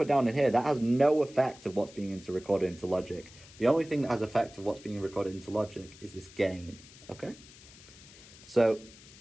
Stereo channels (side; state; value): left; noise; hiss, 21 dB below the sound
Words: down in here, that has no effect of what's being recorded into Logic. The only thing that has effect of what's being recorded into Logic is this gain, okay? So